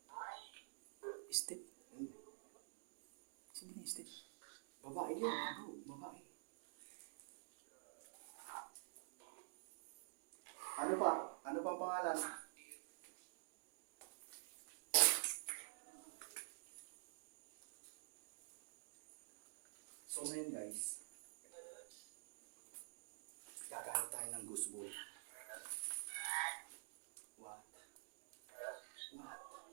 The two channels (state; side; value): silent; left; digital silence